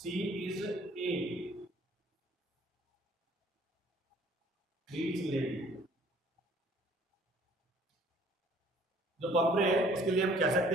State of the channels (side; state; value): both; normal; correlation 0.56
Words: इज ए रीच लेडी. जो पंपरे है उसके लिए हम कह